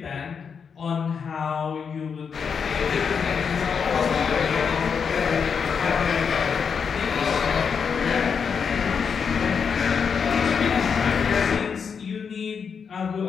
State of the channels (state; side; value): quieter; right; 6.4 dB